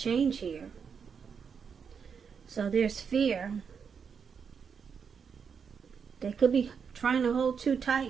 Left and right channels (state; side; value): quieter; left; 6.4 dB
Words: here. So there's fear. They could be trying to hold too